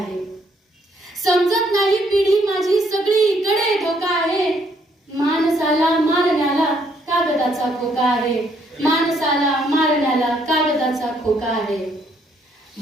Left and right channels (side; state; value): both; normal; correlation 0.69